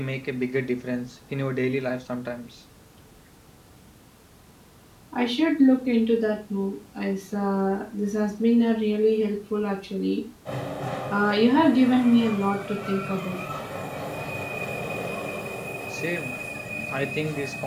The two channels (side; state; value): both; identical; correlation 1.00